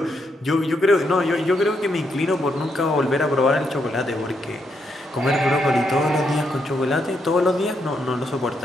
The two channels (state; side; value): normal; both; correlation 0.79